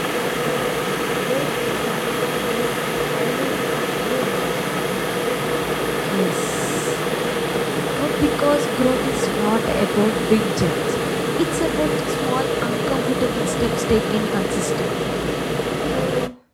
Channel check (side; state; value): both; identical; correlation 1.00